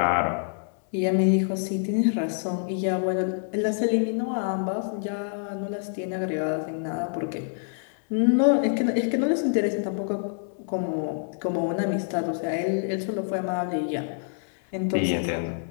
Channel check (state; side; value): silent; right; digital silence